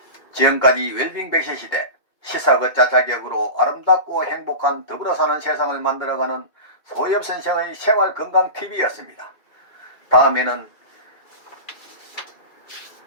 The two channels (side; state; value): right; late; 2.4 ms